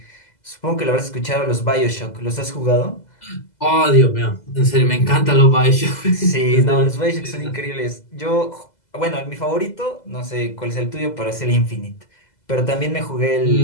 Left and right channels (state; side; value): late; right; 2.0 ms